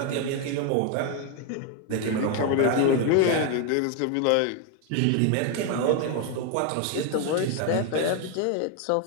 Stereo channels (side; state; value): both; different; correlation 0.01